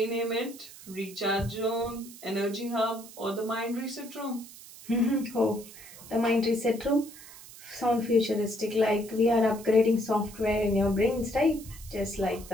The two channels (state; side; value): noise; right; hiss, 17 dB below the sound